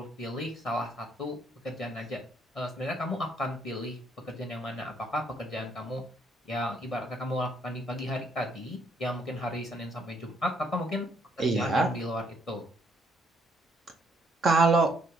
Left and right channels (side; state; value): both; normal; correlation 0.69